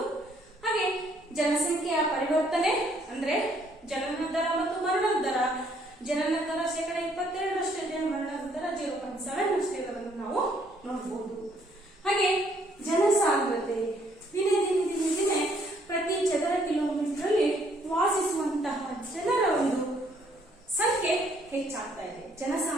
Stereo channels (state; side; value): normal; both; correlation 0.66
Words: ಹಾಗೆ ಜನಸಂಖ್ಯೆಯ ಪರಿವರ್ತನೆ ಅಂದ್ರೆ ಜನನ ದರ ಮತ್ತು ಮರಣದ ದರ. ಜನನ ದರ 22% ಇದೆ, ಮರಣದ ದರ 0.7 ಇರೋದನ್ನು ನಾವು ನೋಡಬಹುದು. ಹಾಗೆ ಜನಸಾಂದ್ರತೆ ದಿನೇ ದಿನೇ ದಿನೇ ದಿನೇ ಪ್ರತಿ ಚದರ ಕಿಲೋಮೀಟರ್ ಅಲ್ಲಿ ವಾಸಿಸುವಂತಹ ಜನರ ಒಂದು ಸಂಖ್ಯೆ ಹೆಚ್ಚಾಗ್ತಾ ಇದೆ,